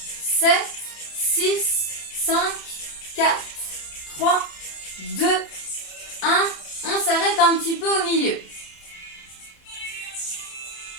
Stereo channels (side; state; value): right; late; 30 ms